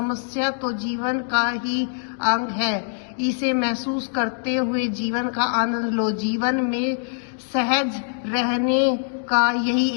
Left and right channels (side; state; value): right; silent; 63 dB below the other